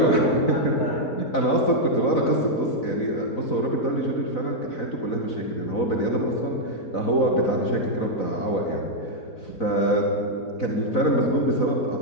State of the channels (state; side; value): late; right; 4.0 ms